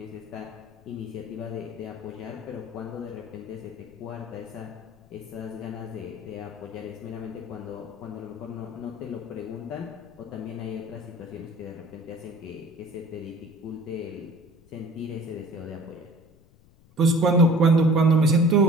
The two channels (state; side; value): noise; left; rumble, 27 dB below the sound